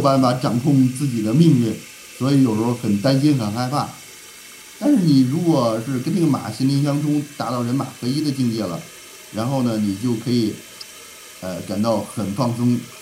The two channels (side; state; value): both; identical; correlation 1.00